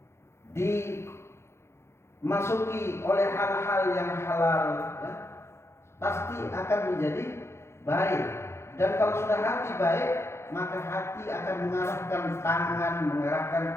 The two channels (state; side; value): late; right; 0.13 ms